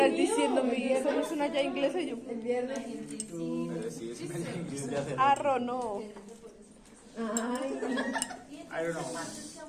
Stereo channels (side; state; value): both; identical; correlation 1.00